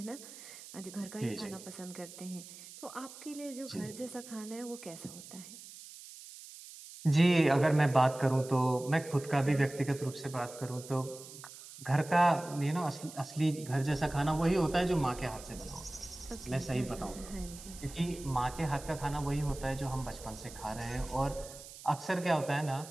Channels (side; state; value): right; noise; hiss, 15 dB below the sound